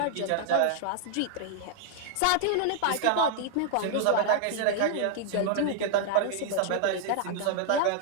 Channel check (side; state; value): both; different; correlation -0.01